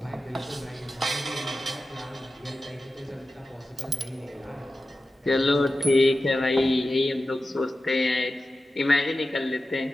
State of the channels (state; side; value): normal; both; correlation 0.93